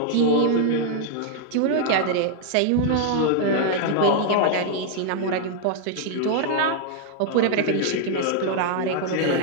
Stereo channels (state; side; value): different; both; correlation 0.00